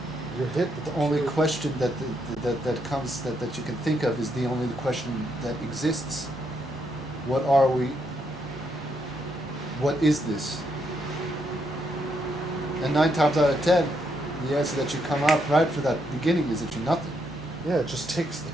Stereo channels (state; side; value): normal; both; correlation 0.77